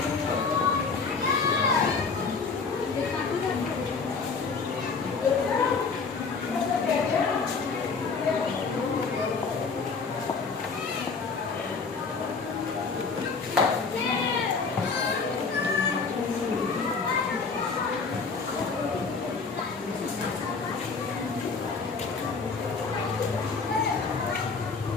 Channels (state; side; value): quieter; right; 4.7 dB